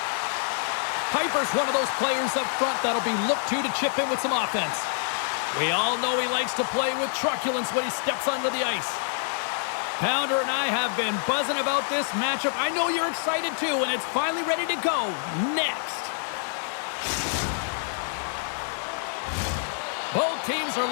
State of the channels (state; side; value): silent; right; 60 dB below the other